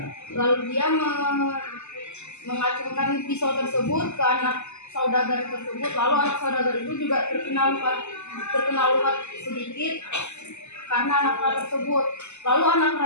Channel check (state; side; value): late; right; 0.83 ms